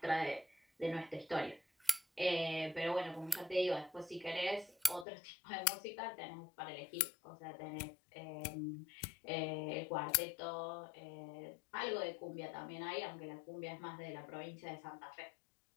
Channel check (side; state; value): right; drops out; at 5.1 s